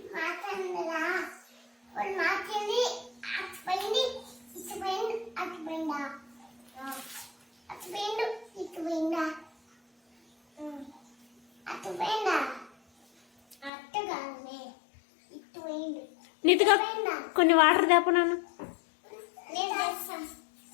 నీతిగా కొన్ని వాటర్ తేప నాన్న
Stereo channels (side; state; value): right; drops out; at 13.7 s